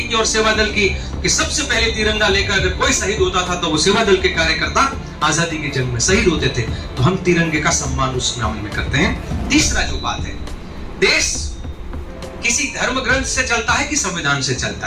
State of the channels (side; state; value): both; identical; correlation 1.00